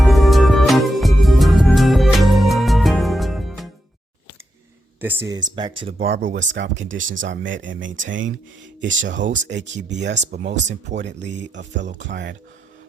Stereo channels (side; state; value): both; normal; correlation 0.85